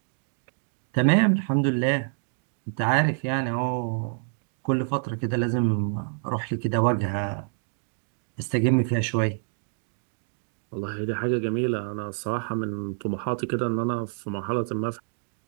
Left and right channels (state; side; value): silent; left; 60 dB below the other